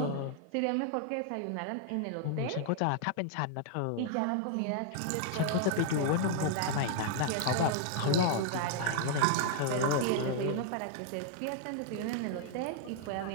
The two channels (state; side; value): different; both; correlation 0.00